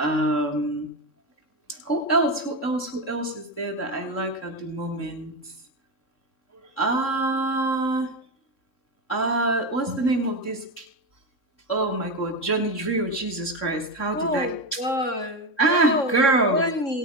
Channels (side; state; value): right; late; 3.7 ms